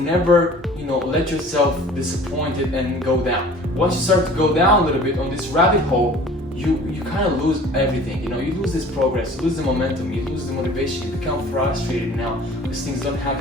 let yourself disappointed and go down. Once you start to go down a little bit on this rabbit hole, you kind of lose everything. You lose this progress, you lose the momentum, you lose the motivation, you become frustrated now because things don't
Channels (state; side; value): normal; both; correlation 0.47